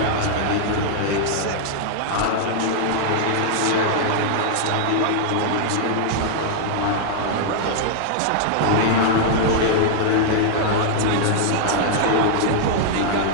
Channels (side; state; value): both; different; correlation -0.01